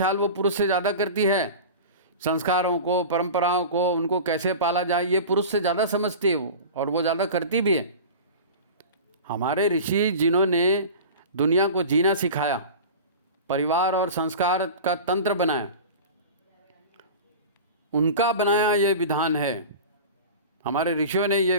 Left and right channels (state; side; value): inverted; both; correlation -0.33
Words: वो पुरुष से ज़्यादा करती है। संस्कारों को, परंपराओं को, उनको कैसे पाला जाए, ये पुरुष से ज़्यादा समझती है वो, और वो ज़्यादा करती भी है। हमारे ऋषि जिन्होंने दुनिया को जीना सिखाया, परिवार और संस्कार का तंत्र बनाया, उनका बनाया ये विधान है, हमारे ऋषियों ने ये